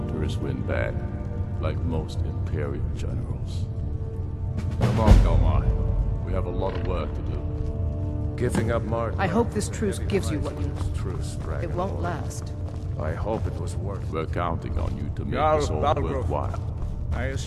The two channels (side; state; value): both; identical; correlation 1.00